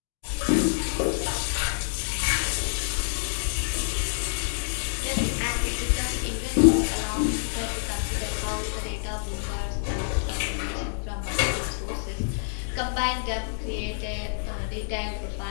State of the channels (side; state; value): right; silent; digital silence